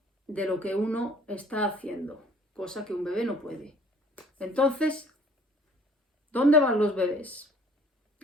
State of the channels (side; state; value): both; normal; correlation 0.54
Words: de lo que uno está haciendo, cosa que un bebé no puede. Entonces, ¿dónde van los bebés